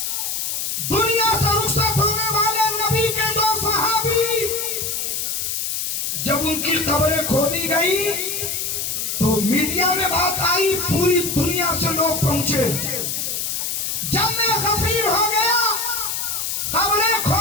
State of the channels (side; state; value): left; noise; hiss, 2 dB below the sound